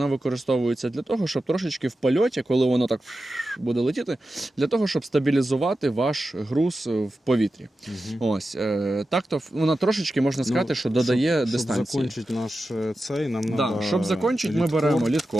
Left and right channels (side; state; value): both; normal; correlation 0.92